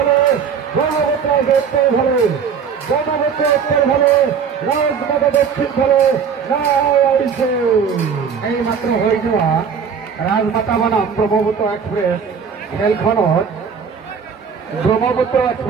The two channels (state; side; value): quieter; left; 6.6 dB